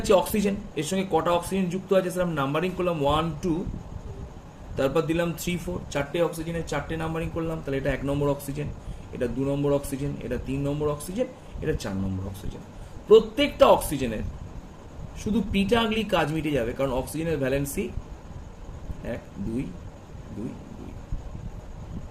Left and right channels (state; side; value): identical; both; correlation 1.00